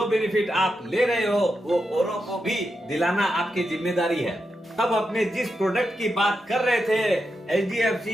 बेनिफिट आप ले रहे हो वो औरों को भी दिलाना आपकी जिम्मेदारी है। अब अपने जिस प्रोडक्ट की बात कर रहे थे,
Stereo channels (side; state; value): both; normal; correlation 0.86